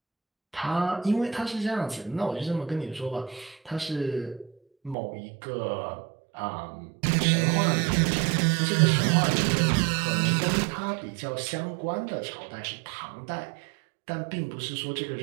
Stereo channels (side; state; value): left; drops out; at 5.0 s